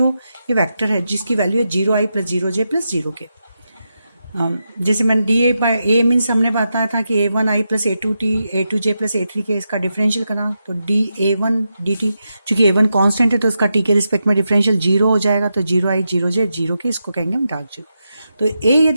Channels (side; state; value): both; inverted; correlation -0.87